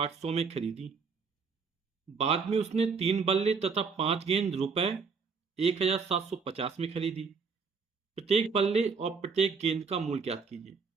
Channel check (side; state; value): left; quieter; 5.3 dB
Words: में खरीदी। बाद में उसने 3 बल्ले तथा 5 गेंद रुपए 1,750 में खरीदी। प्रत्येक बल्ले और प्रत्येक गेंद का मूल्य ज्ञात कीजिए।